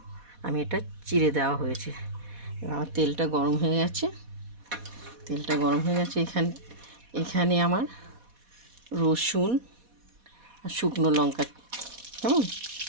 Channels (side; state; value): left; late; 4.1 ms